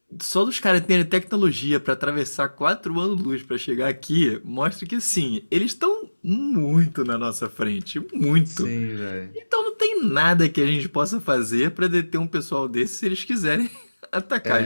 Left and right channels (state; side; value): inverted; both; correlation -1.00